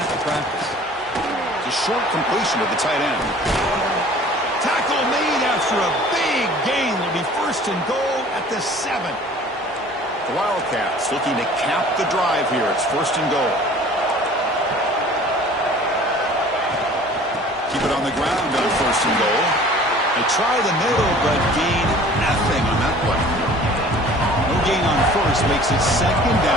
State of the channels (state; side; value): normal; both; correlation 0.48